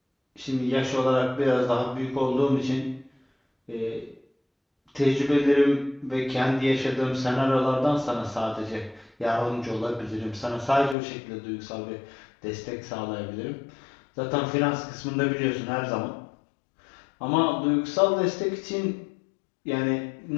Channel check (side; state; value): right; drops out; at 11.0 s